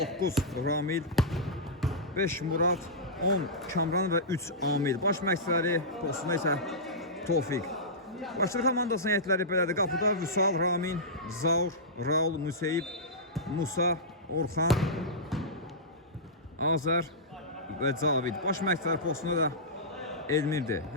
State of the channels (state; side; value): normal; both; correlation -0.15